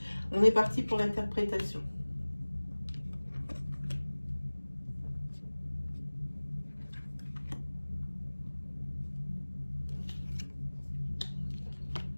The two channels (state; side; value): inverted; both; correlation -1.00